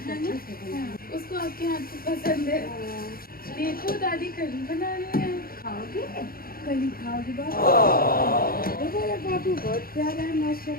उसको आपके हाथ की पसंद है। देखो दादी कली बना रही है, खाओगे? कली खाओगे बाबू, बहुत प्यारा है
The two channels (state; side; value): late; right; 0.43 ms